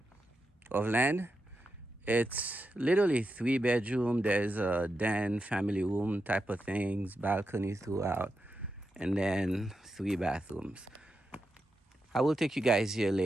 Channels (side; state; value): both; normal; correlation 0.87